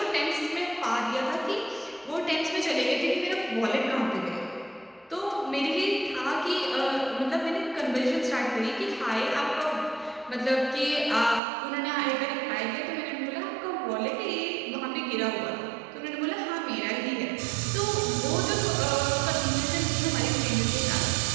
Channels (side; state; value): left; drops out; at 11.4 s